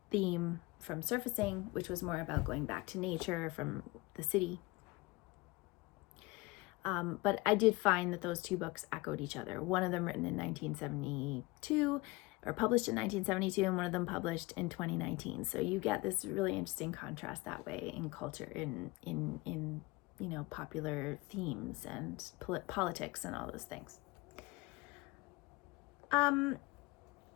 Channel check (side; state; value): right; quieter; 22.5 dB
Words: theme from Surfacing, which was more about going back to nature from the city. But I did find that those 2 books echoed each other. One of them written in 1972, or published in 1972, and one of them published in 2019. So you get this really interesting contrast that way in culture, in you know, popular themes and politics and all those things.